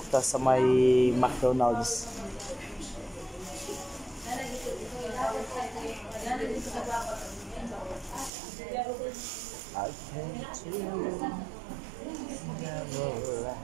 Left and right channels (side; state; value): left; drops out; at 8.3 s